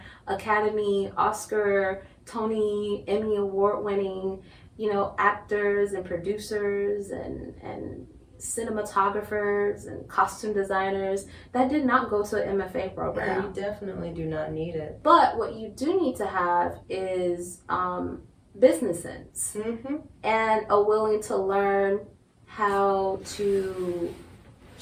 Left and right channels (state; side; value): identical; both; correlation 1.00